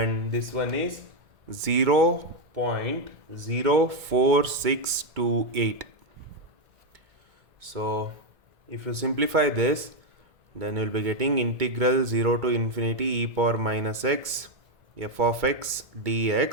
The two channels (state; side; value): late; left; 2.2 ms